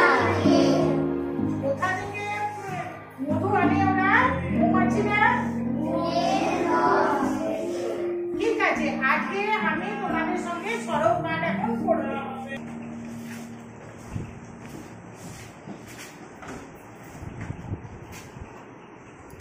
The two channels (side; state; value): both; identical; correlation 1.00